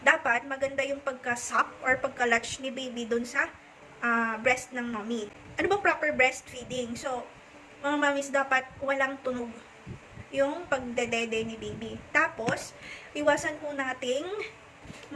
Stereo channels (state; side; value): identical; both; correlation 1.00